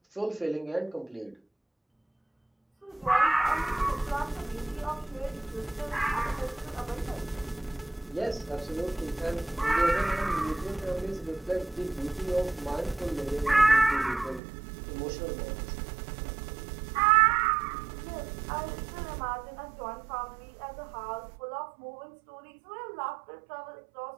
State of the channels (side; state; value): left; drops out; at 14.4 s